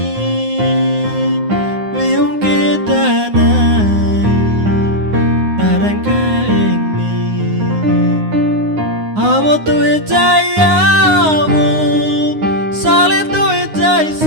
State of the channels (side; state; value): left; late; 9.6 ms